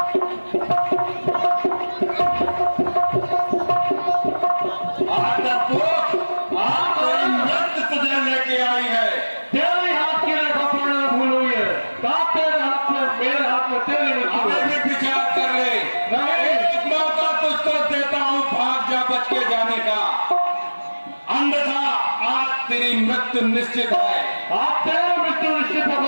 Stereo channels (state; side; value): inverted; both; correlation -1.00